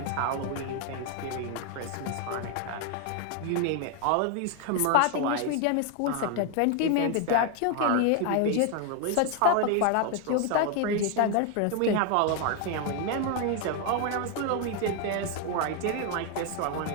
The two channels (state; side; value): different; both; correlation 0.00